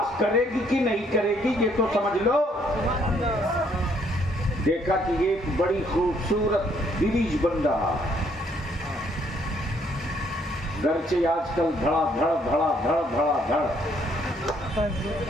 کرے گی کہ نہیں کرے گی، یہ تو سمجھ لو. دیکھا کہ ایک بڑی خوبصورت بریج بن رہا، گرچہ آج کل دھڑا دھڑ دھڑا دھڑ دھڑا دھڑ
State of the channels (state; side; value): normal; both; correlation 0.67